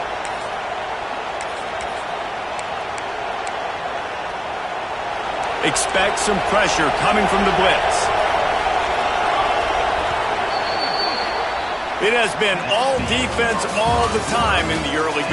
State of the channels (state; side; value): identical; both; correlation 1.00